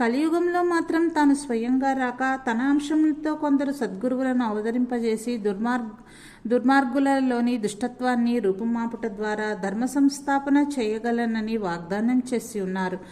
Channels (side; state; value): both; identical; correlation 1.00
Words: కలియుగంలో మాత్రం తాను స్వయంగా రాక తన అంశంతో కొందరు సద్గురువులను అవతరింపజేసి దుర్మార్గులలోని దుష్టత్వాన్ని రూపుమాపుట ద్వారా ధర్మ సంస్థాపన చేయగలనని వాగ్దానం చేసి ఉన్నారు.